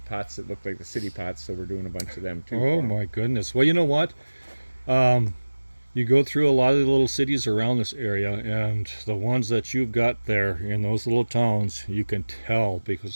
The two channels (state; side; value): inverted; both; correlation -1.00